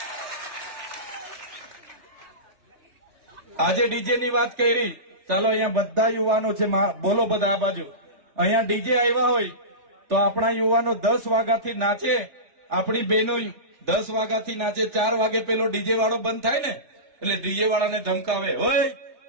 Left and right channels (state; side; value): late; left; 3.4 ms